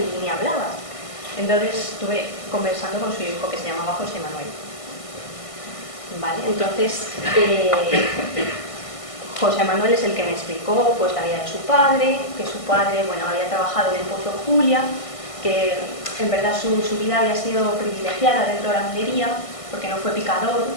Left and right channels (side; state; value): right; late; 1.5 ms